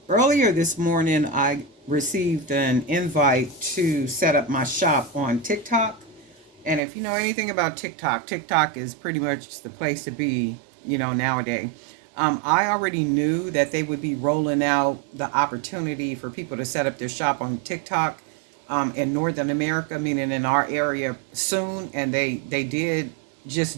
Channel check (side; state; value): left; drops out; at 6.8 s